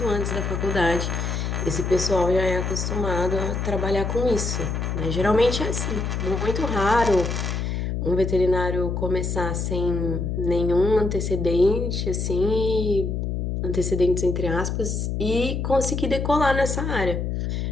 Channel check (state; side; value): noise; left; hum, 2 dB below the sound